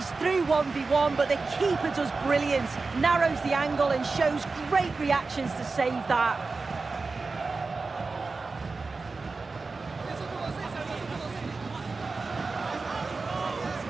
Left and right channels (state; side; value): quieter; left; 4.0 dB